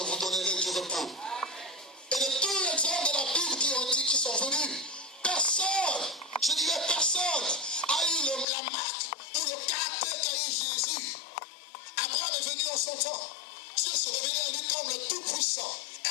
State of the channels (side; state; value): right; drops out; at 8.5 s